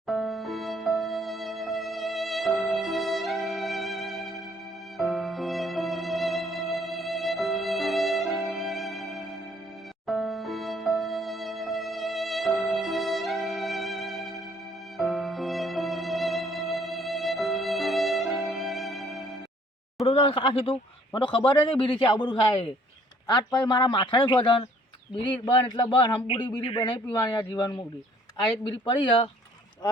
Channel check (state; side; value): normal; both; correlation 0.61